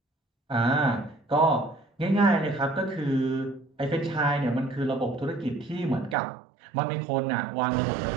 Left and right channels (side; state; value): left; drops out; at 6.2 s